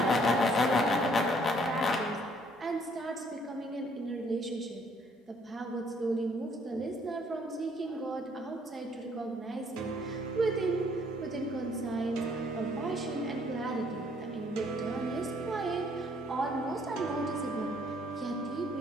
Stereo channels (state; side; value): normal; both; correlation 0.64